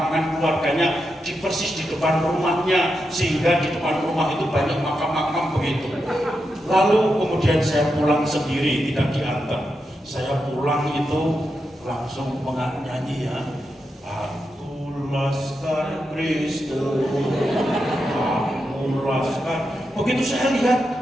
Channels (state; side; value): normal; both; correlation 0.87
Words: keluarganya di persis di depan rumahnya, sehingga di depan rumah itu banyak makam-makam begitu. Lalu kemudian saya pulang sendiri, tidak diantar. Saya pulang itu langsung nyanyi ya, Aku Laskar Kristus, Aku Laskar. Begitu saya